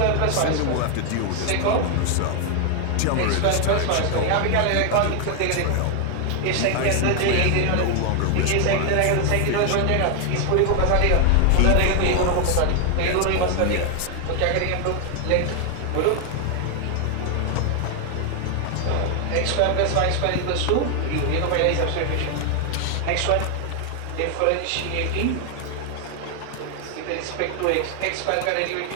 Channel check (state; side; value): different; both; correlation 0.01